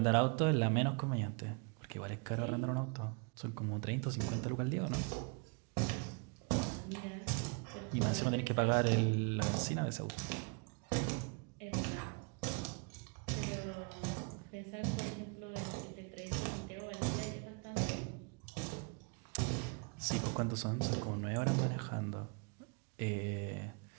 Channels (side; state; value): left; quieter; 34.8 dB